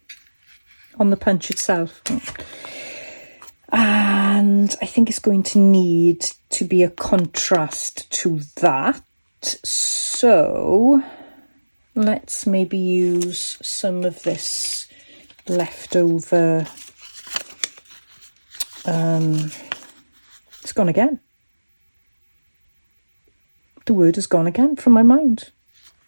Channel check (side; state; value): both; inverted; correlation -1.00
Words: punch itself. And I think it's going to need to be a contrast to that. So let's maybe use some of this leftover. It's gone again. The word has gone again from my mind.